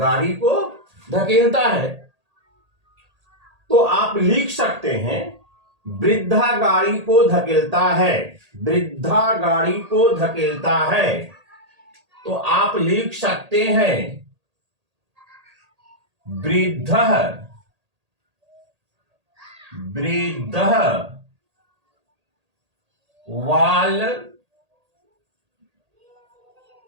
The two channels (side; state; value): left; late; 1.8 ms